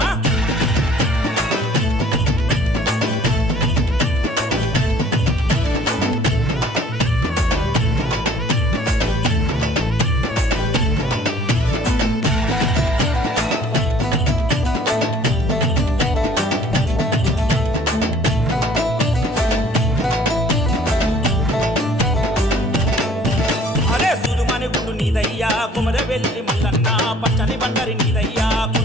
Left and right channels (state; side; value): normal; both; correlation 0.55